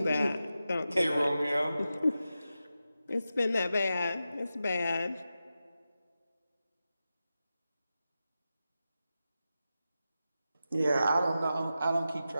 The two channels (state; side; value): inverted; both; correlation -0.92